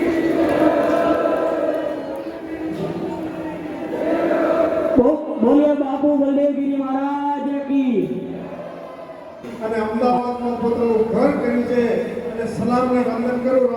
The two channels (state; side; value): identical; both; correlation 1.00